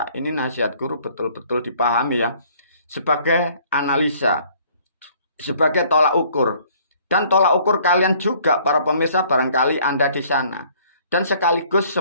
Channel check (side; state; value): both; inverted; correlation -0.58